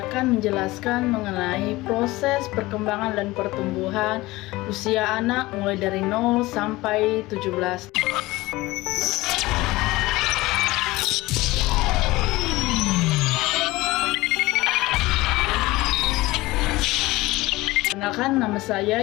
akan menjelaskan mengenai proses perkembangan dan pertumbuhan usia anak mulai dari 0 sampai 17. Kenalkan, nama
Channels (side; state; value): right; quieter; 19.7 dB